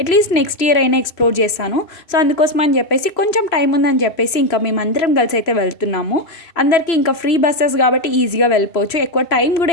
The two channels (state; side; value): late; right; 3.0 ms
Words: అట్లీస్ట్ నెక్స్ట్ ఇయర్ అయినా ఎక్స్ప్లోర్ చేస్తాను. సో అందుకోసం అని చెప్పేసి కొంచెం టైం ఉందని చెప్పేసి ఇంకా మేమందరం కలిసి అయితే వెళ్తున్నాము. అందరికీ ఇంకా ఫ్రీ బస్సెస్ కాబట్టి ఈజీగా వెళ్ళిపోవచ్చు. ఎక్కువ టైం కూడా